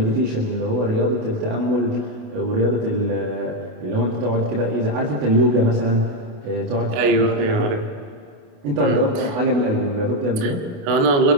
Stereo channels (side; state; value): left; late; 28 ms